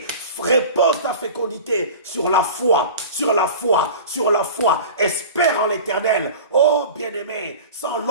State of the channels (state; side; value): inverted; both; correlation -0.36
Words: repose ta fécondité sur la foi. Espère en l'Éternel. Oh, bien-aimé, sans